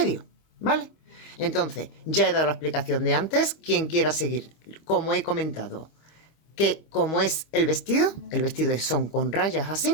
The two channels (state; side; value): late; right; 26 ms